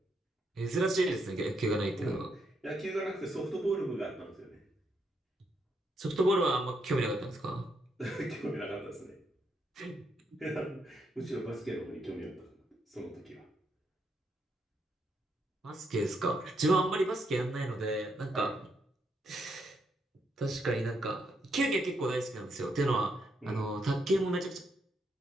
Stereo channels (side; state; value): both; normal; correlation 0.77